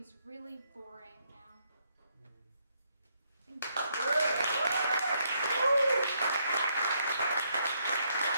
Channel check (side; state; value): both; inverted; correlation -0.74